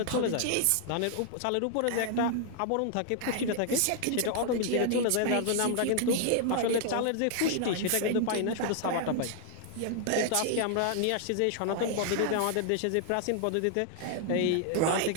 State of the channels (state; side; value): different; both; correlation 0.00